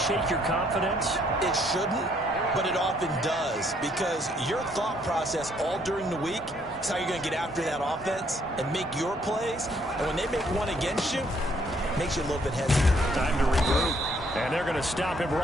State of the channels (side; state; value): both; normal; correlation 0.67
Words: your confidence? It shouldn't, but it often does, because your thought process all during the week is how you're going to get after that offense and make your plays. And when they make one against you, it makes you a little bit hesitant. Time to regroup. And they're going to stop him